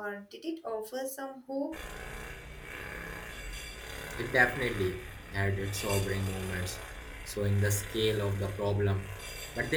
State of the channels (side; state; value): both; identical; correlation 1.00